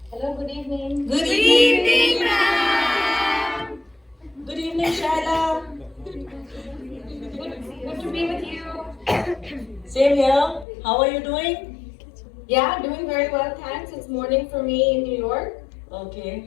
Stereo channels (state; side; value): drops out; right; at 10.7 s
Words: Hello, good evening. Good evening, ma'am. Good evening, Shyla. Good to be with you. Same here. How are you doing? Yeah, doing very well, thanks. It's morning for me in New York.